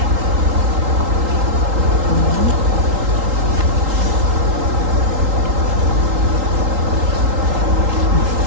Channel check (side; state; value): left; late; 3.8 ms